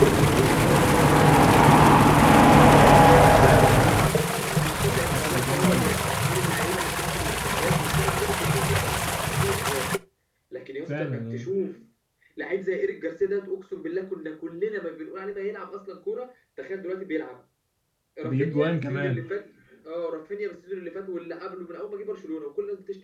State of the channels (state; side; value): identical; both; correlation 1.00